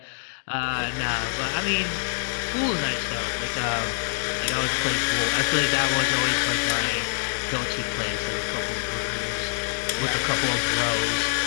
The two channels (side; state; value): right; silent; digital silence